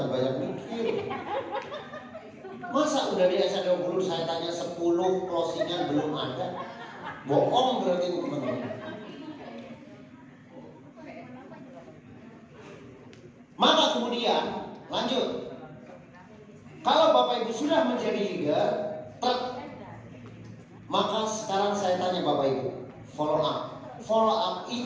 banyak mikir. Masa udah di SC20 saya tanya 10 closingan belum ada? Bohong berarti teman-teman. Maka kemudian lanjut. Kalau Bapak Ibu sudah menjadi leader, maka sekarang saya tanya Bapak Ibu, follow up. Follow up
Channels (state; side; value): identical; both; correlation 1.00